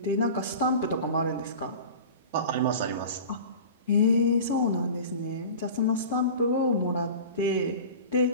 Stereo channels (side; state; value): both; inverted; correlation -0.37